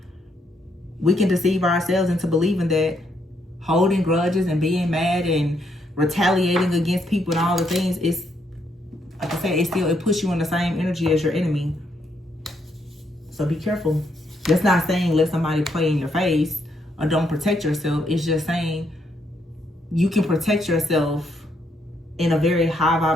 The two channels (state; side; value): normal; both; correlation 0.75